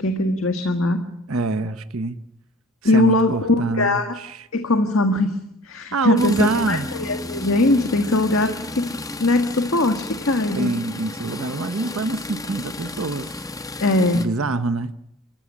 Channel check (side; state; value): both; normal; correlation 0.45